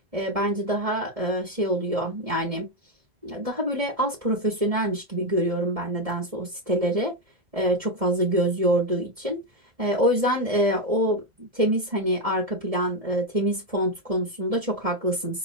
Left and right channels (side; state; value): left; late; 1.7 ms